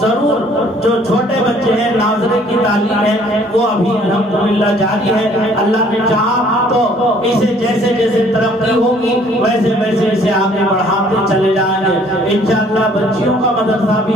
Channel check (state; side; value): normal; both; correlation 0.58